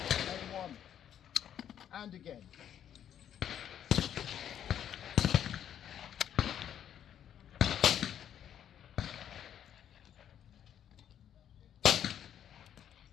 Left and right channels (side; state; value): right; quieter; 9.8 dB